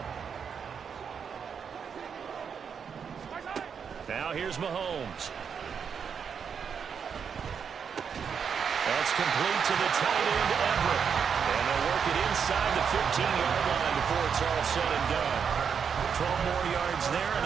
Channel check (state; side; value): quieter; left; 6.8 dB